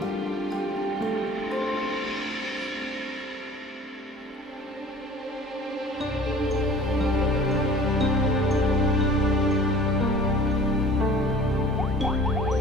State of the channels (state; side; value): normal; both; correlation 0.47